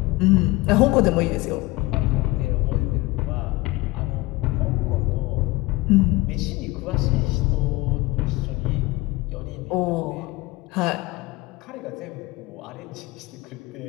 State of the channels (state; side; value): quieter; right; 20.9 dB